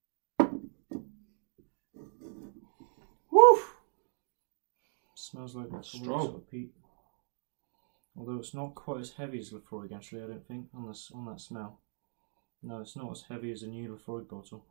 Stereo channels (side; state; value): left; silent; 54 dB below the other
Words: Woo! Smells like that strong sort of peat. Although it's not quite as heavy as Lefroy, actually, I don't think, on that smell. No, it's not as heavy as a new Lefroy bottle,